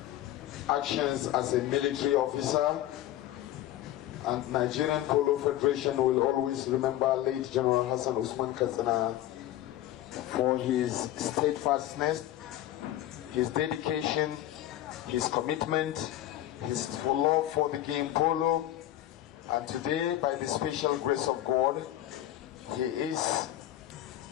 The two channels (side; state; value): right; quieter; 13.6 dB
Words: actions as a military officer, and Nigerian Polo Federation will always remember late General Hassan Usman Katsina for his steadfastness, his dedication, his commitment, his love for the game polo, And today, by the special grace of God, he is